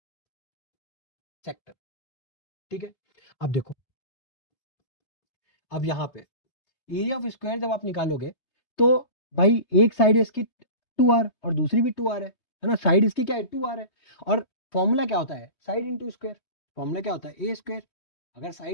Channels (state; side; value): late; right; 3.2 ms